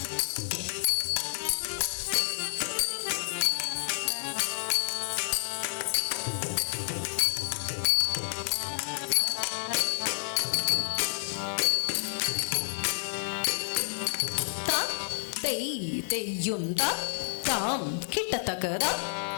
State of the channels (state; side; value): silent; right; digital silence